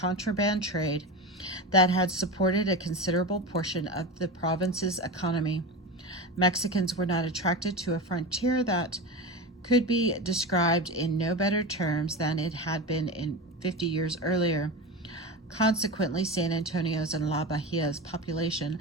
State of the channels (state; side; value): normal; both; correlation 0.24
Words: trade that had supported a considerable portion of the province's economy. Mexicans were not attracted to a frontier that could be described in no better terms than it had been in 50 years earlier. Consequently, San Antonio's and La Bahia's population,